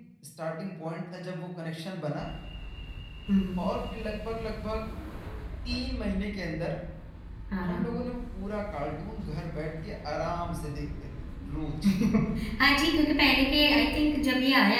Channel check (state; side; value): identical; both; correlation 1.00